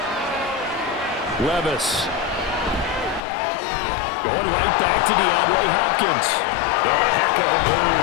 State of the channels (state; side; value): drops out; right; at 3.2 s